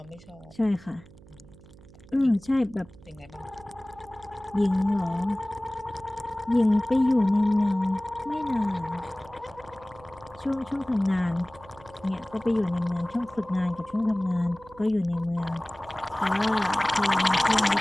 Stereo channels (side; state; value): right; noise; hum, 22 dB below the sound